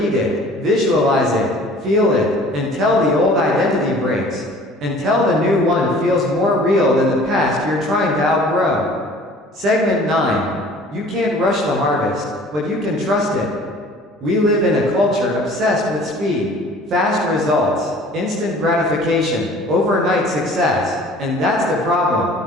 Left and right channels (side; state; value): both; normal; correlation 0.49